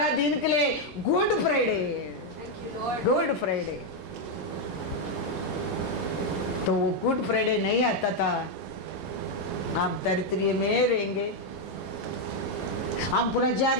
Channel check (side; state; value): both; normal; correlation 0.02